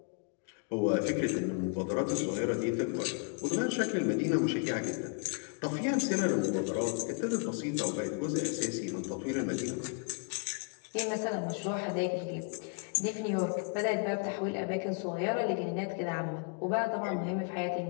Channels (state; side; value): quieter; right; 38.1 dB